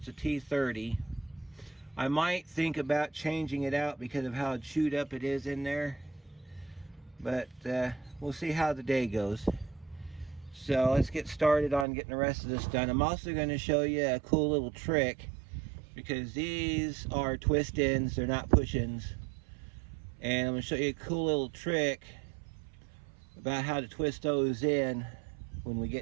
a T30. I might think about changing it out because of how chewed up it is in there, but we'll see how the day goes. So let's get started on getting the rest of this done. I'm also going to show you a cool little trick, because these are twist ins, they're not push ins, and I'm going to show you a cool little trick about how to twist those in when we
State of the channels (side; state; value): left; drops out; at 11.9 s